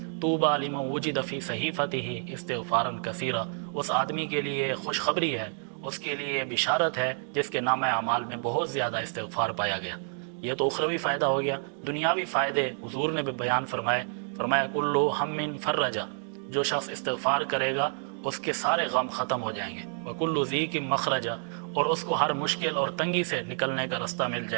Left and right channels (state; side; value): silent; left; 59 dB below the other